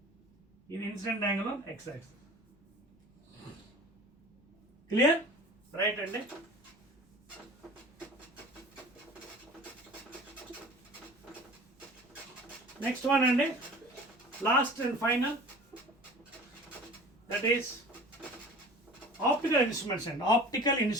ఇది incident angle on x-axis. Clear? Right అండి. Next one and last and final, that is optical instruments and optical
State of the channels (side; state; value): both; normal; correlation 0.42